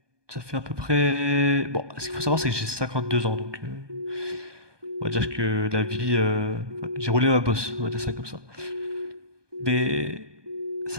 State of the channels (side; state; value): left; late; 1.2 ms